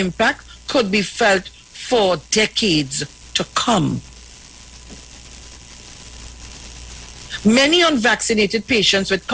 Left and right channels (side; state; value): both; identical; correlation 1.00